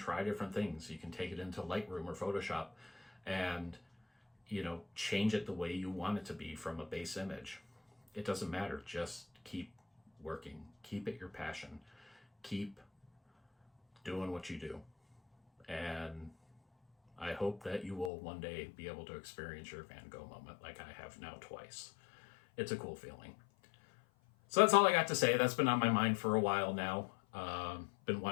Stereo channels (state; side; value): drops out; right; at 18.1 s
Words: different things. You can take it into Lightroom or Photoshop and, change it the way you want it to be from a base image. It doesn't matter. Just keep working. Keep it your passion. Keep doing what you do. And I hope that you will one day be able to experience your Van Gogh moment like I have now twice. It's a cool feeling. So that's all I got to say. That's been on my mind for a while now. Been